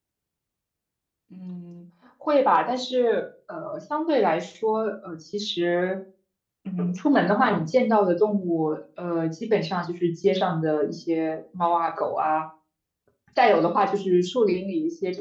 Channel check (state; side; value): identical; both; correlation 1.00